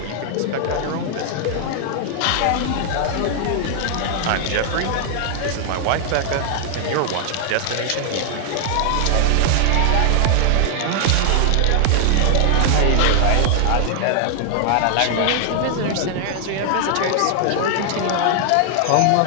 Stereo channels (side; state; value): both; different; correlation 0.00